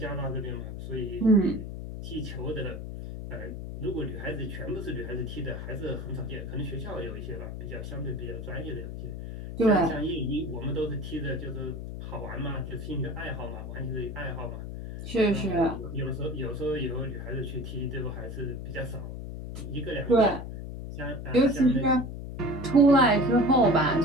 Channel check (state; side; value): noise; left; hum, 7 dB below the sound